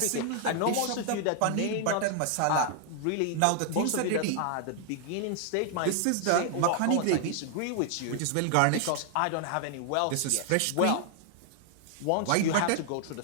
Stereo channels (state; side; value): different; both; correlation 0.00